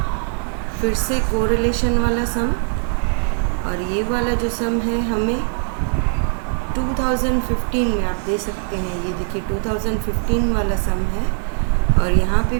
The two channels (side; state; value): left; silent; digital silence